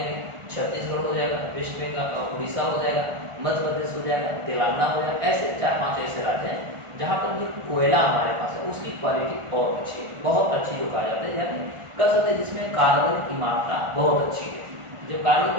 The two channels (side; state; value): left; late; 1.4 ms